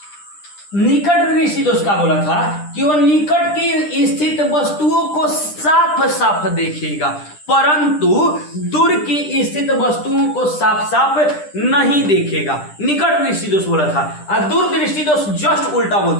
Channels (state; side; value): late; right; 10 ms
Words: निकट दृष्टि दोष का बोला था कि वो निकट की स्थित वस्तुओं को साफ साफ देखेगा, परंतु दूर की स्थित वस्तुओं को साफ साफ नहीं देखेगा। निकट दृष्टि दोष बोला था, और दूर दृष्टि दोष जस्ट उल्टा